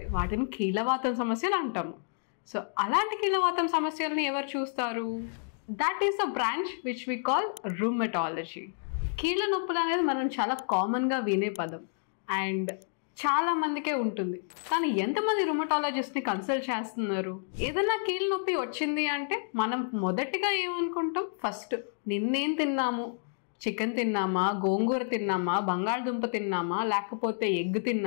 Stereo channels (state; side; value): silent; right; digital silence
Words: వాటిని కీళ్ళవాతం సమస్యలు అంటాము. సో అలాంటి కీళ్ళవాతం సమస్యల్ని ఎవరు చూస్తారు? That is a branch which we call rheumatology. కీళ్ళ నొప్పులు అనేది మనం చాలా కామన్గా వినే పదం అండ్ చాలా మందికే ఉంటుంది. కానీ ఎంతమంది రూమటాలజిస్ట్ని కన్సల్ట్ చేస్తున్నారు? ఏదైనా కీళ్ళ నొప్పి వచ్చింది అంటే మనం మొదటిగా ఏమనుకుంటాం? ఫస్ట్ నిన్నేం తిన్నాము, చికెన్ తిన్నామా, గోంగూర తిన్నామా, బంగాళదుంప తిన్నామా, లేకపోతే ఎగ్